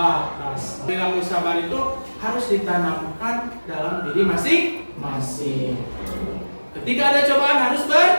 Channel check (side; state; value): both; inverted; correlation -1.00